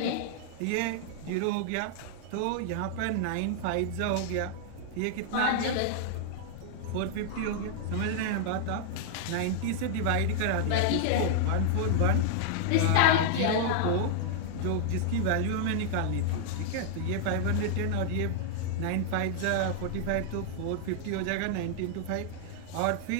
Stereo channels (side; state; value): both; different; correlation -0.01